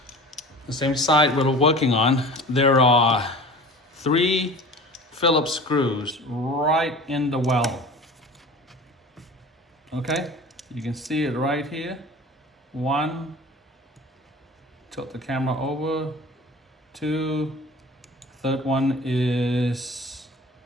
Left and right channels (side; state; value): both; normal; correlation 0.39